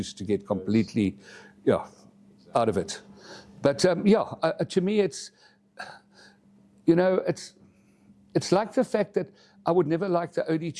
to get completely out of it. But to me, it's like the fact that I would never like the OD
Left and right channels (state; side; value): identical; both; correlation 1.00